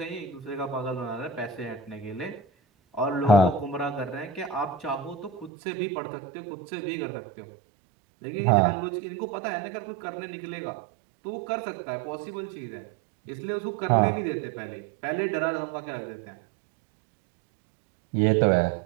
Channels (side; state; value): left; drops out; at 5.5 s